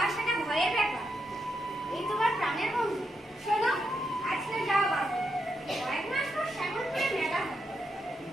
আসাটা ভয়ের ব্যাপার? এই তোমার প্রাণের বন্ধু। শোনো, আজকে যাওয়া বাদ, কয়েক মাস পর শ্যামলপুরে মেলা হবে।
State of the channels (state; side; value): normal; both; correlation 0.83